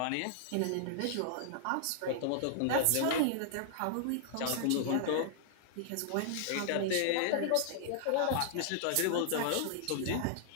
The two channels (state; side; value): different; both; correlation -0.01